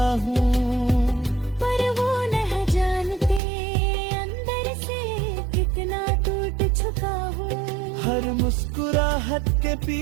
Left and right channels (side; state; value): left; drops out; at 3.4 s